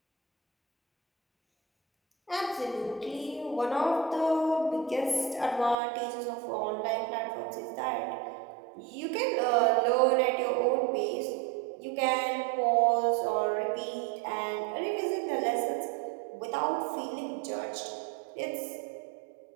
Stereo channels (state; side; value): drops out; left; at 5.8 s